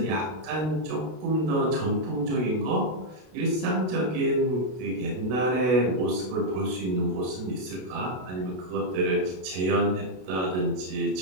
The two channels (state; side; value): late; left; 32 ms